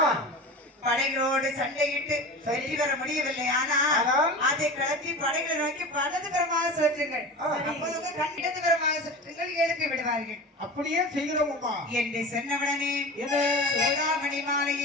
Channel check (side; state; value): both; normal; correlation 0.31